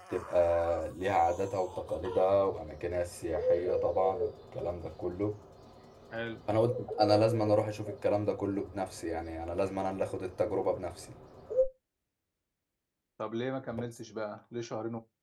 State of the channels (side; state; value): both; identical; correlation 1.00